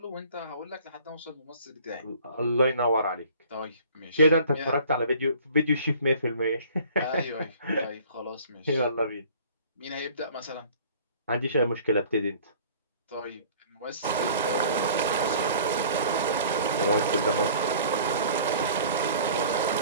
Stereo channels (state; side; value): inverted; both; correlation -0.49